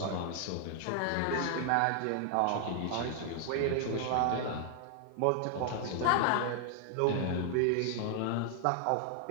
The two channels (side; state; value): both; different; correlation 0.00